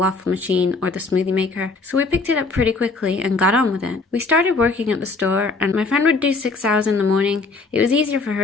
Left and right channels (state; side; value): quieter; right; 3.8 dB